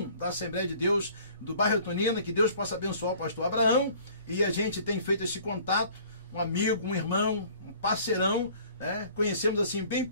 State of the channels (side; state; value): both; inverted; correlation -0.52